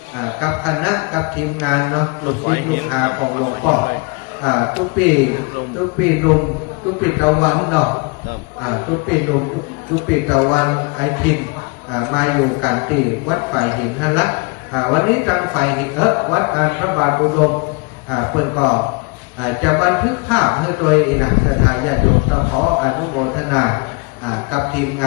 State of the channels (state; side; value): quieter; right; 30.3 dB